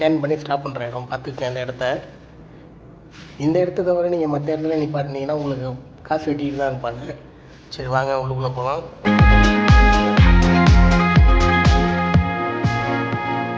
பண்ணி ஸ்டாப் பண்ணுற இடம், பார்த்துக்கங்க அந்த இடத்த. இந்த இடத்த தவிர நீங்கள் மற்ற இடத்துல நிப்பாட்டினீங்கன்னா உங்களுக்கு காசு வெட்டிட்டு தான் இருப்பாங்க. சரி வாங்க உள்ளுக்குள்ளே போகலாம்.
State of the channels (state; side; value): identical; both; correlation 1.00